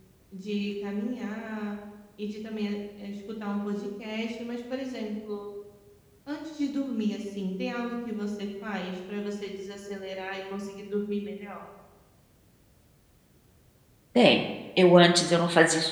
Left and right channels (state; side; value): identical; both; correlation 1.00